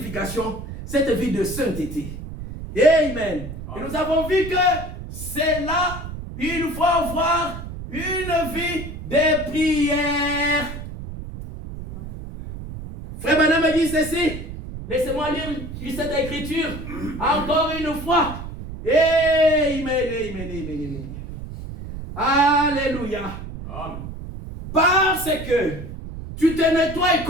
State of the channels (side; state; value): right; noise; rumble, 10 dB below the sound